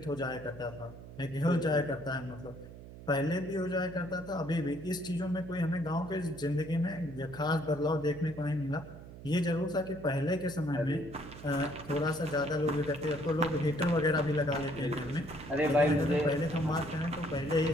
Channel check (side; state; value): right; noise; hum, 15 dB below the sound